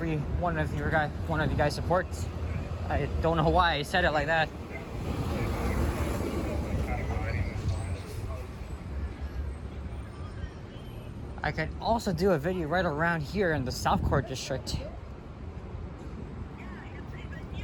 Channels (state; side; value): identical; both; correlation 1.00